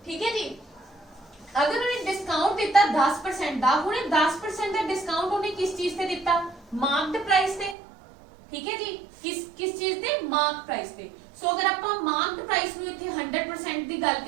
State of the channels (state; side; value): drops out; left; at 7.8 s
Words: ठीक है जी। अगर उन्हें डिस्काउंट दिता 10% दा, उन्हें 10% दा डिस्काउंट उन्हें किस चीज से दिता, मार्क्ड प्राइस से। ठीक है जी, किस चीज से, मार्क प्राइस से। सो अगर आप मार्क्ड प्राइस नु इथे 100% दी गल